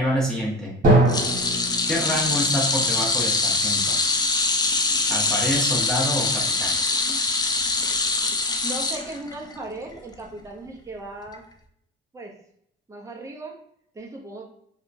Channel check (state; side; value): normal; both; correlation 0.19